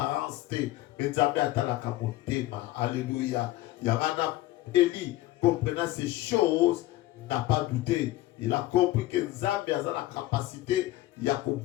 te, mais Zambé atalaka motema. Alléluia. Yamana Eli, comprenant ces choses, n'a pas douté. Il a compris que Zambé a la capacité,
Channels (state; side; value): quieter; right; 16.4 dB